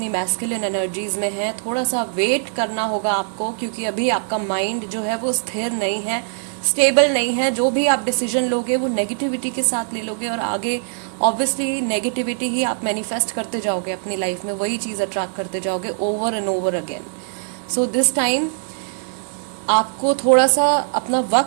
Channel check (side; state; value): left; silent; digital silence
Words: मैस्कुलिन एनर्जीज में हैं, थोड़ा सा वेट करना होगा आपको, क्योंकि अभी आपका माइंड जो है वो स्थिर नहीं है, स्टेबल नहीं है। जो भी आप डिसीजन लोगे वो नेगेटिविटी के साथ ले लोगे और आगे ऑब्वियसली नेगेटिविटी ही आप मैनिफेस्ट करते जाओगे अपनी लाइफ में, वही चीज़ अट्रैक्ट करते जाओगे over and over again. So this time आपको थोड़ा सा अपना